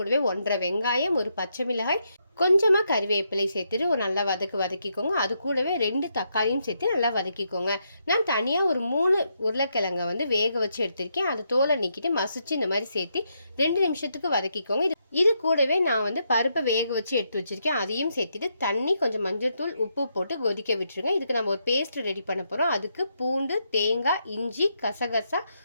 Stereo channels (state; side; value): inverted; both; correlation -0.79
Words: 1.5 வெங்காயம், ஒரு பச்சை மிளகாய், கொஞ்சமாக கறிவேப்பிலை சேர்த்துட்டு ஒரு நல்லா வதக்கிக்கோங்க. அது கூடவே 2 தக்காளியும் சேர்த்து நல்லா வதக்கிக்கோங்க. நான் தனியாக ஒரு 3 உருளைக்கிழங்கை வேக வச்சு எடுத்திருக்கேன். அது தோலை நீக்கிட்டு மசிச்சு இந்த மாதிரி சேர்த்து 2 நிமிஷத்துக்கு வதக்கிக்கோங்க. இது கூடவே நான் பருப்பை வேக வச்சு எடுத்து வச்சிருக்கேன். அதையும் சேர்த்துட்டு தண்ணி, கொஞ்சம் மஞ்சள் தூள், உப்பு போட்டு கொதிக்க விட்டுருங்க. இதுக்கு நம்ம ஒரு பேஸ்ட் ரெடி பண்ண போகிறோம். அதுக்கு பூண்டு, தேங்காய், இஞ்சி, கசகசா,